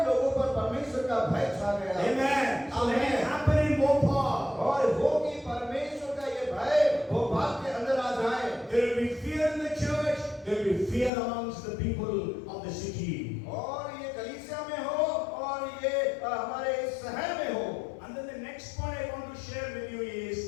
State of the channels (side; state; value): right; drops out; at 11.1 s